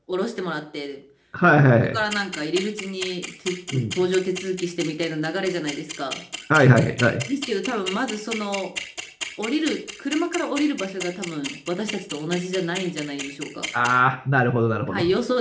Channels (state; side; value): identical; both; correlation 1.00